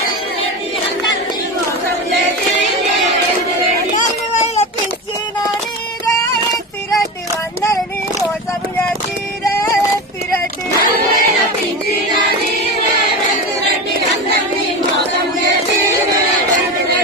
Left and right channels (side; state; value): both; normal; correlation 0.23